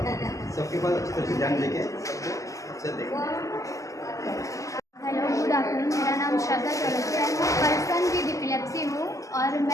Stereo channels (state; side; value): late; right; 0.16 ms